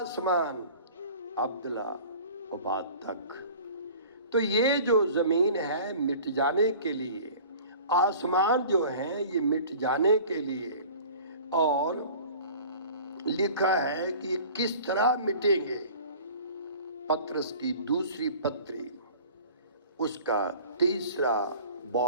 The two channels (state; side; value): inverted; both; correlation -0.44